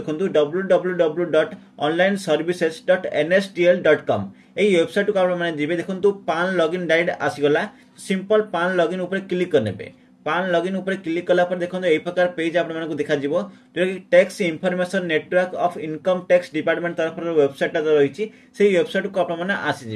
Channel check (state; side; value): identical; both; correlation 1.00